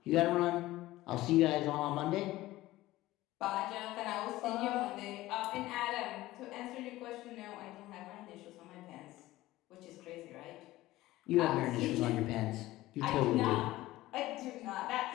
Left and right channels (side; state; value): right; quieter; 17.0 dB